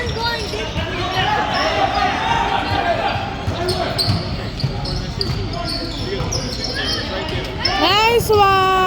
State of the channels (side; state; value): both; identical; correlation 1.00